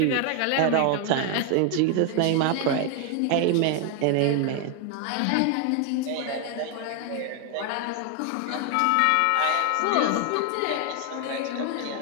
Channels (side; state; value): both; different; correlation 0.00